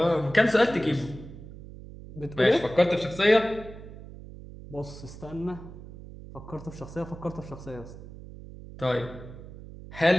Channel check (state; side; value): noise; right; hum, 15 dB below the sound